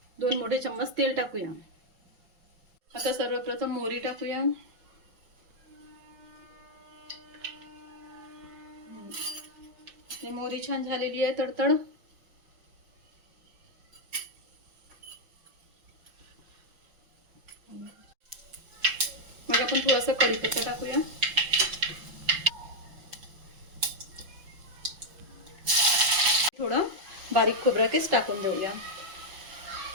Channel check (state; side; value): late; left; 5.7 ms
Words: 2 मोठे चम्मच तेल टाकूया। आता सर्वप्रथम मोहरी टाकूया. मोहरी छान झालेली आहे तडतड. मग आपण थोडासा कढीपत्ता टाकूया. थोडं बारीक खोबरा केस टाकून देऊया.